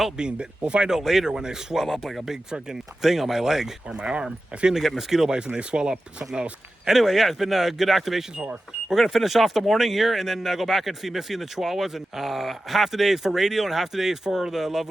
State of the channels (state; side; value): normal; both; correlation 0.93